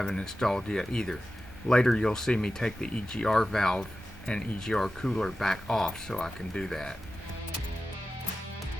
installed yet either. Later you'll see me take the EGR valve and EGR cooler back off so I can do that.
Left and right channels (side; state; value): both; normal; correlation 0.93